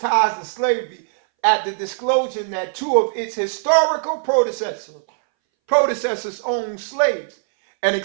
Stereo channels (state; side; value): silent; left; 63 dB below the other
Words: to slavery after disclosure that two of its historical predecessors owned slaves and